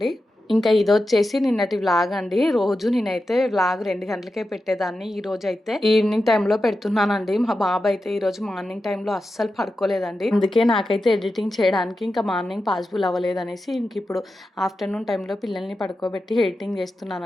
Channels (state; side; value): normal; both; correlation 0.91